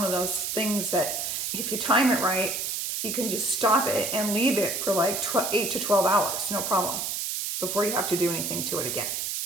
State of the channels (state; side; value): noise; right; hiss, 2 dB below the sound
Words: of those things that if you time it right, you can just stop it and leave it for like 8 to 12 hours, no problem, before you have to do anything to it again.